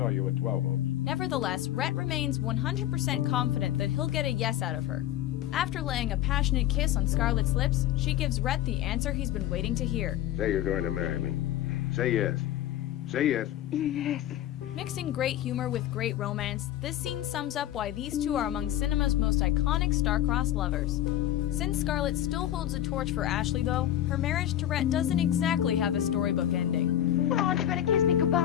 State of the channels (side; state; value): right; quieter; 12.3 dB